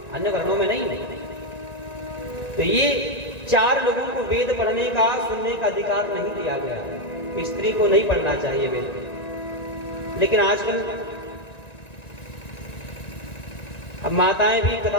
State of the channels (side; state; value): right; late; 1.9 ms